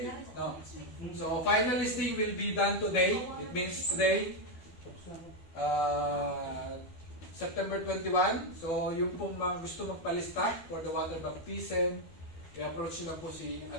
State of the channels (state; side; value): late; right; 12 ms